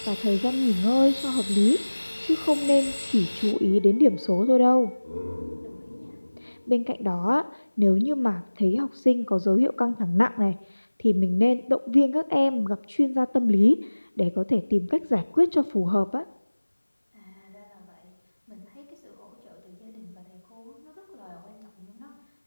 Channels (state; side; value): inverted; both; correlation -1.00